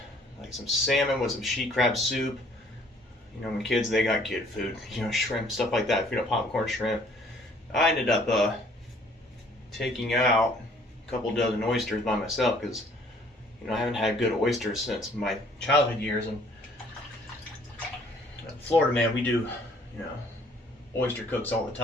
like some salmon with some she crab soup. My kids, they got kid food. Shrimp, stuff like that. Popcorn shrimp. I ended up taking out a couple dozen oysters by myself, because I haven't had good oysters since my childhood years. And Florida, man, we do oyster cooks all the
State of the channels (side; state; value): both; normal; correlation 0.59